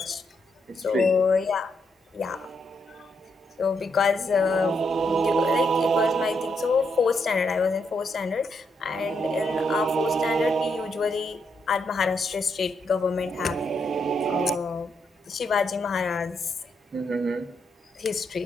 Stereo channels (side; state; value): both; normal; correlation 0.78